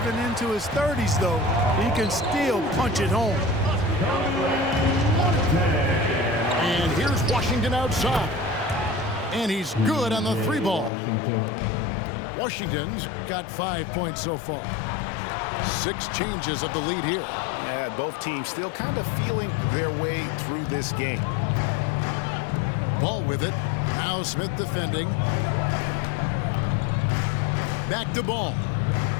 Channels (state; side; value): drops out; right; at 10.9 s